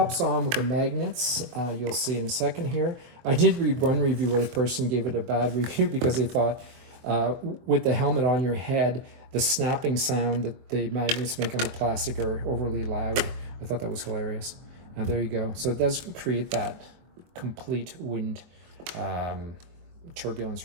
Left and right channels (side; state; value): left; late; 23 ms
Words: on with the magnets, you'll see in a second here. I did read one review where the person gave it a bad review because they thought with the helmet on your head, the snapping sound that the magnets make on the plastic are overly loud. I thought that was hilarious. There you go. So it does create that complete wind turbulence